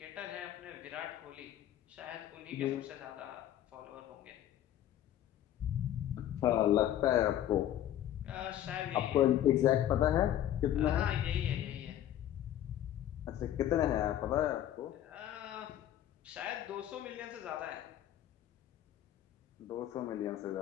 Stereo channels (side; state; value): right; quieter; 11.9 dB